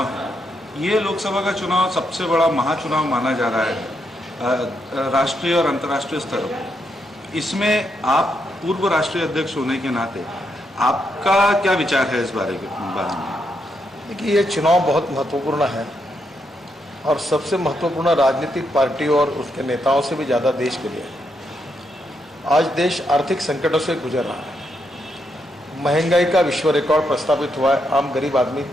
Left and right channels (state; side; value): normal; both; correlation 0.80